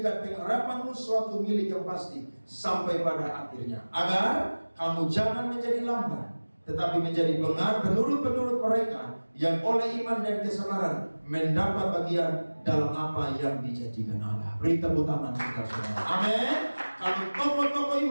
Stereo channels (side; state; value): both; inverted; correlation -1.00